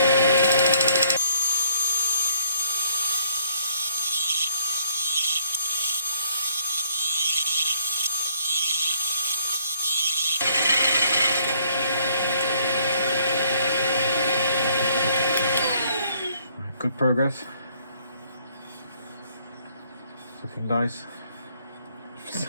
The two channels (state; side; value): inverted; both; correlation -0.64